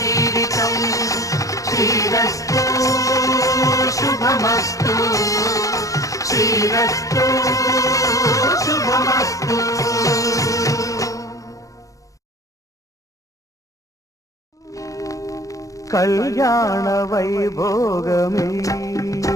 శ్రీరస్తు శుభమస్తు శ్రీరస్తు శుభమస్తు. కళ్యాణ వైభోగమే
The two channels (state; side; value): late; right; 0.16 ms